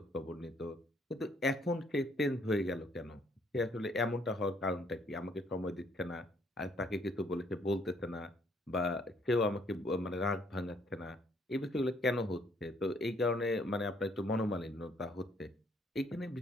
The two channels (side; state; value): both; normal; correlation 0.66